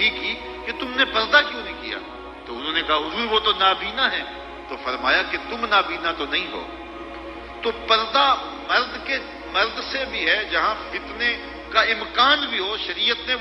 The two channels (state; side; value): identical; both; correlation 1.00